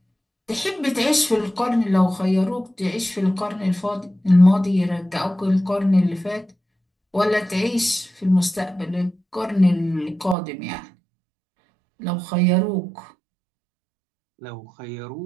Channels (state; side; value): drops out; left; at 10.4 s